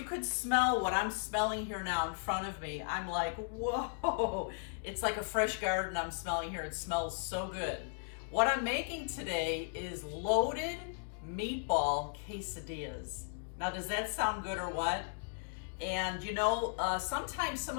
could smell what I'm smelling here now in front of me, I'm like, whoa, it's like a fresh garden I'm smelling here. It smells so good. What I'm making today is loaded meatball quesadillas. Now, does that sound good or what? And you know, sometimes some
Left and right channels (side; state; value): right; silent; digital silence